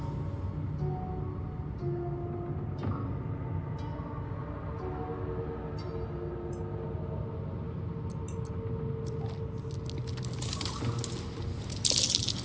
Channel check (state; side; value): identical; both; correlation 1.00